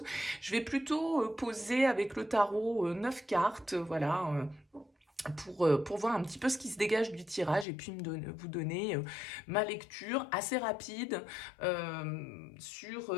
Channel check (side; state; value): right; drops out; at 7.7 s